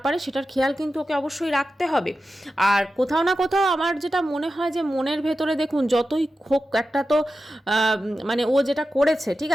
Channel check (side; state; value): both; normal; correlation 0.92